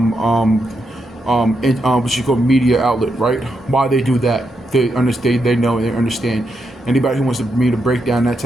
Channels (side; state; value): both; normal; correlation 0.83